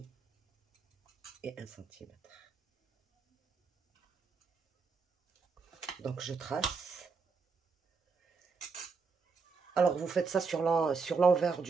et 1 cm. Donc je trace. Alors vous faites ça sur l'envers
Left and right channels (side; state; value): left; quieter; 4.8 dB